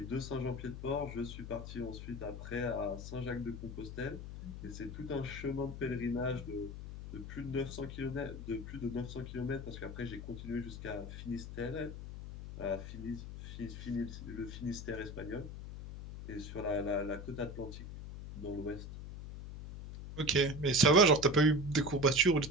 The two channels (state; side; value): noise; left; hum, 9 dB below the sound